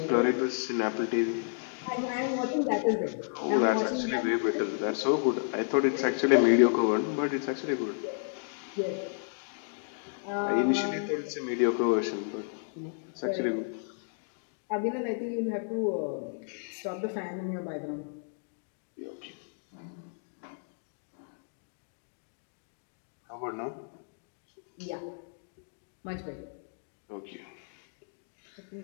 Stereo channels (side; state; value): right; silent; digital silence